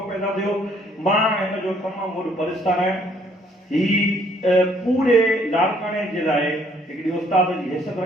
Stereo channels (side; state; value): both; normal; correlation 0.64